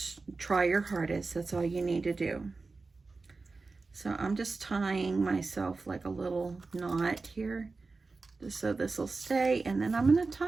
try your hardest. That's all you need to do. So I'm just tying myself like a little knot here, just so this will stay, and then I'm going to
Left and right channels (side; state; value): left; quieter; 3.9 dB